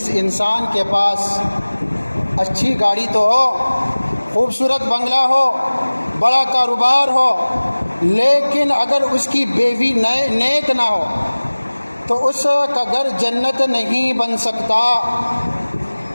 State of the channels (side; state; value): both; inverted; correlation -1.00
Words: انسان کے پاس اچھی گاڑی تو ہو، خوبصورت بنگلہ ہو، بڑا کاروبار ہو، لیکن اگر اس کی بیوی نیک نہ ہو تو اس کا گھر جنت نہیں بن سکتا۔